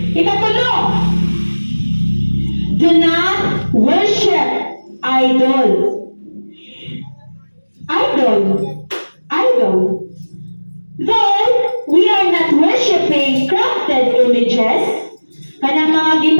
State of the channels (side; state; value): both; inverted; correlation -1.00